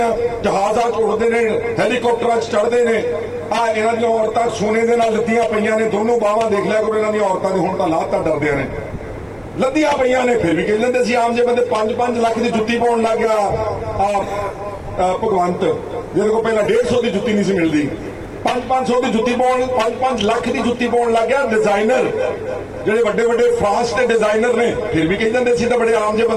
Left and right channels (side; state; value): both; identical; correlation 1.00